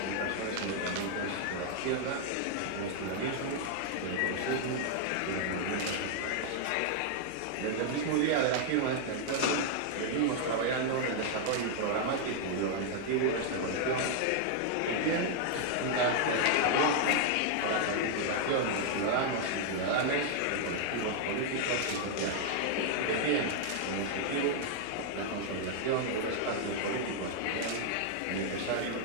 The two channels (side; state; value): both; different; correlation 0.00